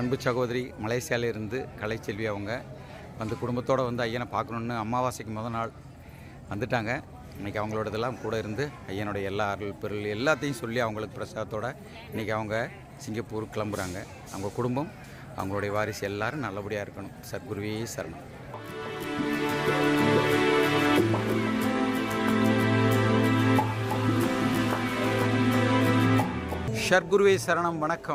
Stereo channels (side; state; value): both; identical; correlation 1.00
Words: சகோதரி மலேசியாவிலிருந்து கலைச்செல்வி அவங்க வந்து குடும்பத்தோடு வந்து ஐயனை பார்க்கணுன்னு அமாவாசைக்கு முதல் நாள் வந்துட்டாங்க. இன்றைக்கி அவங்களோட இதெல்லாம் கூட இருந்து ஐயனுடைய எல்லா அருள் பொருள் எல்லாத்தையும் சொல்லி அவங்களுக்கு பிரசாதத்தோடு இன்றைக்கி அவங்க சிங்கப்பூர் கிளம்புறாங்க. அவங்க குடும்பம் அவங்களுடைய வாரிசு எல்லோரும் நல்லபடியாக இருக்கணும். சத்குருவே சரணம். ஷர்குருவே சரணம்.